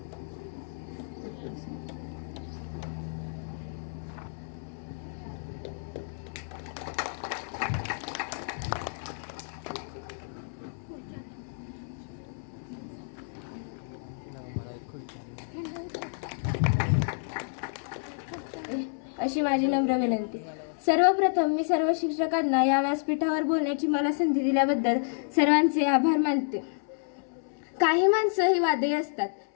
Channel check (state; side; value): silent; right; 58 dB below the other